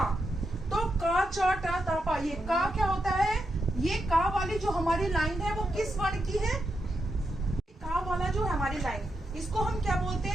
तो का, चा, टा, ता, पा। ये का क्या होता है? ये का वाली जो हमारी लाइन है वो किस वर्ण की है? का वाला जो है हमारी लाइन, इसको हम क्या बोलते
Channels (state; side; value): normal; both; correlation 0.85